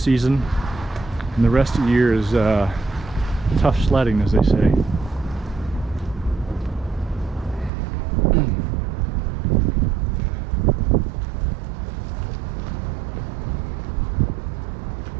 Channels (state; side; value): drops out; left; at 7.7 s